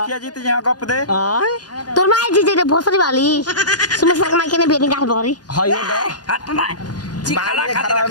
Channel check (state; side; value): late; right; 0.69 ms